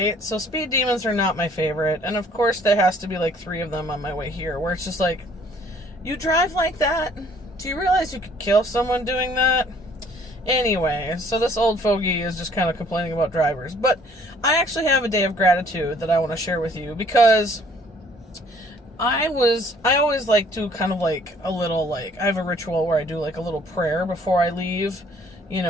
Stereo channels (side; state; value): both; normal; correlation 0.59